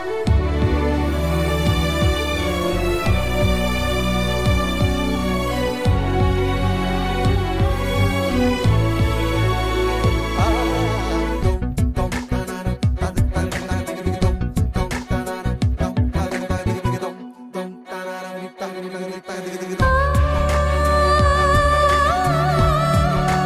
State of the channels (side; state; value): both; identical; correlation 1.00